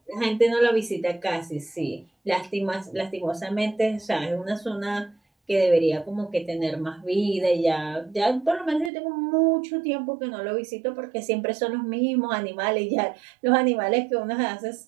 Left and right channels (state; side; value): drops out; left; at 8.9 s